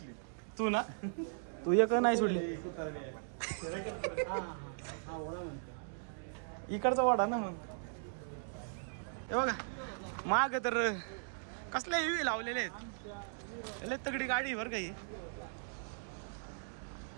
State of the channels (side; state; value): left; silent; digital silence